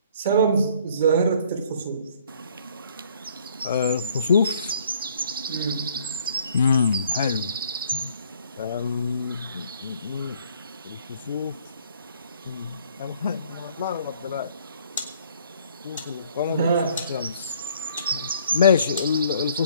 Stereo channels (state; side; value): inverted; both; correlation -0.61